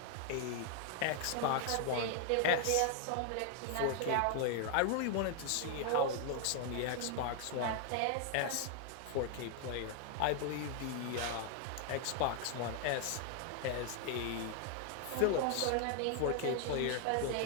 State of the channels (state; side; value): different; both; correlation 0.00